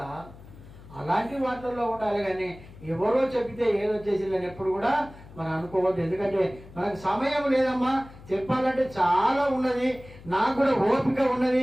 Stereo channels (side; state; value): left; noise; hum, 19 dB below the sound